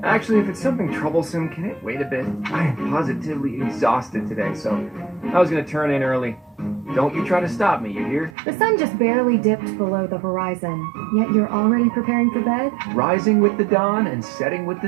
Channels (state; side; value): drops out; left; at 8.3 s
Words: Actually, if it's something troublesome, can it wait a bit? I am positively exhausted today, so I was gonna turn in early. Don't you try to stop me, you hear? The sun just barely dipped below the horizon, yet you're already preparing for bed? Rising with the dawn and setting with the